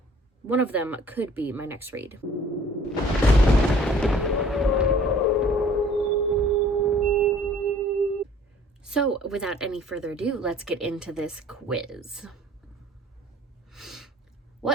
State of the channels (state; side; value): normal; both; correlation 0.53